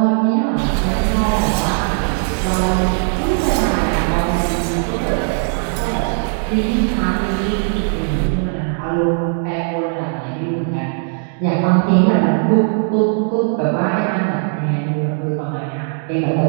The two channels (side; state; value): left; silent; 56 dB below the other